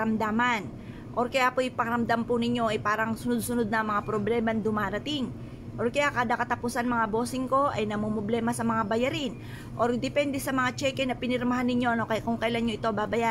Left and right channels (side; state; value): both; identical; correlation 1.00